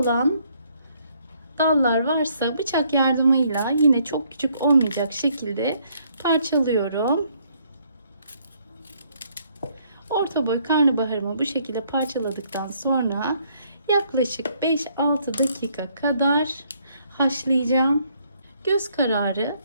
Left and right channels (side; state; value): both; inverted; correlation -0.68